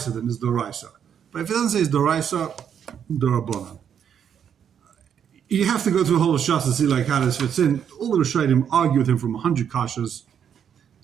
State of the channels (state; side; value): quieter; left; 8.3 dB